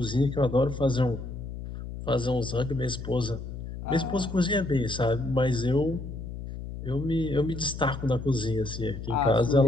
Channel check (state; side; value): noise; left; hum, 9 dB below the sound